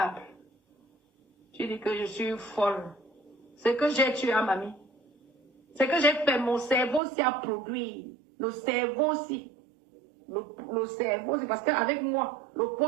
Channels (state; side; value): drops out; left; at 7.0 s